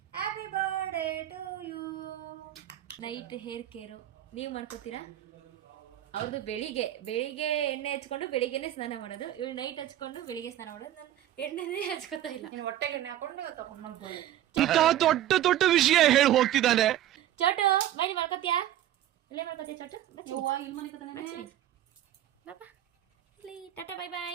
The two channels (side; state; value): left; quieter; 12.7 dB